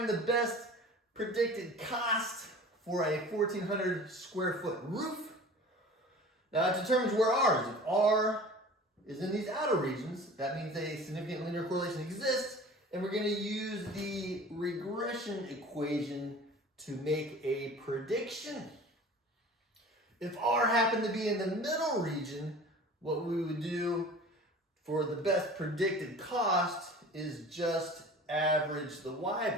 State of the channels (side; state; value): both; normal; correlation 0.41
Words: the best predicted cost for a 1,400 square foot roof. Now it determines where R is. If R is in these outer regions, that means a significant linear correlation exists, and we're going to use the regression equation to make a prediction. If R happened to be in the middle region, what we would do for the best predicted cost is just average the Y